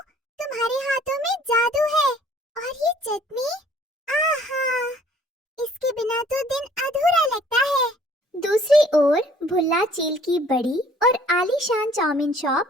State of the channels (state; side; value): normal; both; correlation 0.56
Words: तुम्हारे हाथों में जादू है। और ये चटनी, आहा, इसके बिना तो दिन अधूरा लगता है। दूसरी ओर भुल्ला चील की बड़ी और आलीशान चाउमीन